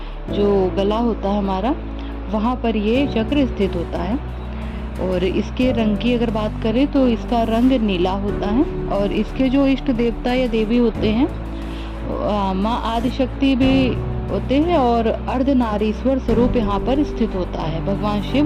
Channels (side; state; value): both; identical; correlation 1.00